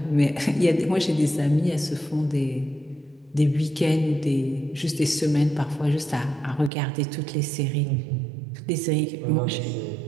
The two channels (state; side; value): drops out; left; at 6.7 s